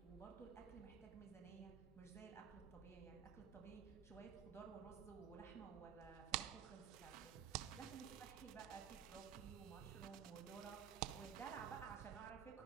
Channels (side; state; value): left; quieter; 8.6 dB